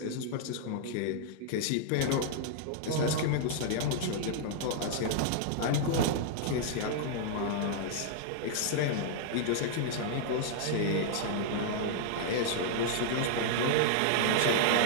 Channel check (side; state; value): both; different; correlation -0.01